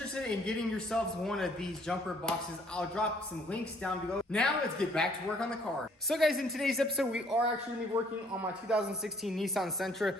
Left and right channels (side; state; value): both; normal; correlation 0.62